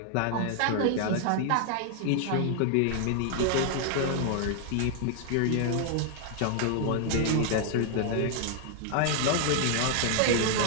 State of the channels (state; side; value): different; both; correlation 0.00